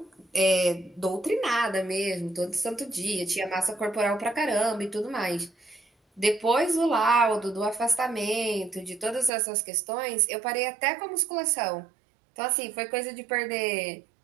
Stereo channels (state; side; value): drops out; left; at 9.3 s